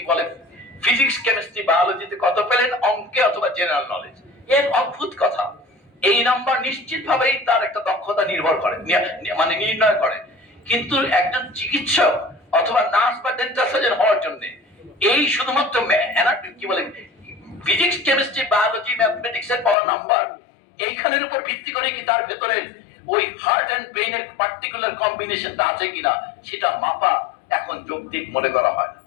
বলে, ফিজিক্স, কেমিস্ট্রি, বায়োলজিতে কত পেলেন, অঙ্কে অথবা জেনারেল নলেজ, এর অদ্ভুত কথা। এই নাম্বার নিশ্চিত ভাবেই তার একটা দক্ষতা নির্ভর করে, মানে নির্ণয় করে। কিন্তু একজন চিকিৎসক অথবা নার্স বা ডেন্টাল সার্জন হওয়ার জন্য এই শুধুমাত্র কি বলে ফিজিক্স, কেমিস্ট্রি, বায়োলজি, ম্যাথমেটিক্স এর পাওয়া নাম্বার, এইখানের উপর ভিত্তি করে কি তার ভেতরে ওই হার্ট এন্ড ব্রেইনের পার্টিকুলার কম্বিনেশনটা আছে কিনা সেটা মাপা এখন যৌক্তিক মনে করা হয় না।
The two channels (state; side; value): drops out; right; at 19.8 s